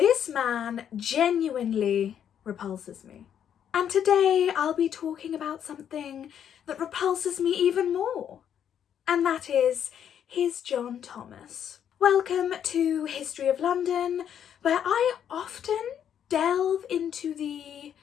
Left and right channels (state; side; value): quieter; right; 9.1 dB